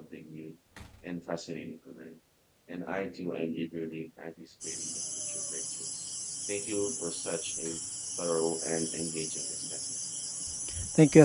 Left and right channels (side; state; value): both; identical; correlation 1.00